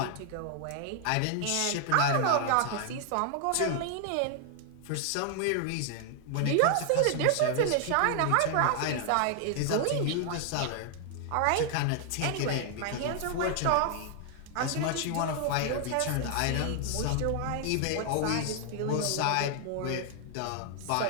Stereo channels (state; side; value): different; both; correlation 0.00